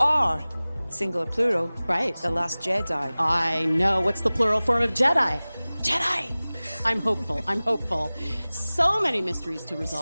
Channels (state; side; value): inverted; both; correlation -0.99